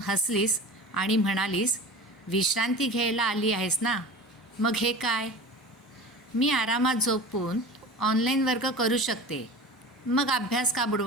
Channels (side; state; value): both; normal; correlation 0.34